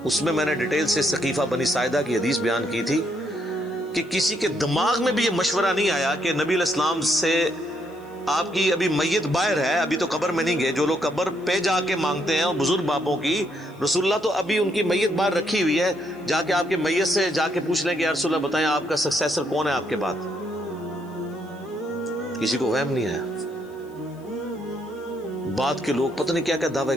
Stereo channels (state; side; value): noise; left; hiss, 30 dB below the sound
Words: اس میں میں نے ڈیٹیل سے ثقیفہ بنی ساعدہ کی حدیث بیان کی تھی کہ کسی کے دماغ میں بھی یہ مشورہ نہیں آیا کہ نبی علیہ السلام سے آپ کی ابھی میت باہر ہے، ابھی تو قبر میں نہیں گئے، جو لوگ قبر پہ جا کے مانگتے ہیں اور بزرگ باپوں کی، رسول اللہ تو ابھی ان کی میت باہر رکھی ہوئی ہے، جا کے آپ کے میت سے جا کے پوچھ لیں کہ یا رسول اللہ بتائیں آپ کا سکسیسر کون ہے آپ کے بعد۔ کسی کو وہم نہیں آیا، بعد کے لوگ پتہ نہیں کیا کیا دعوے